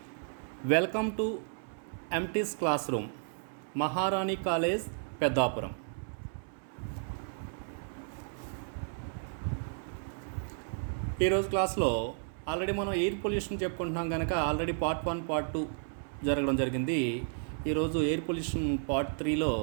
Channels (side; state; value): left; silent; 56 dB below the other